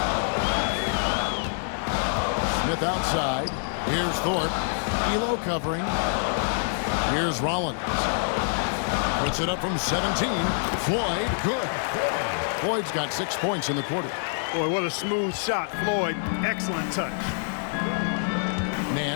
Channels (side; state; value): right; silent; digital silence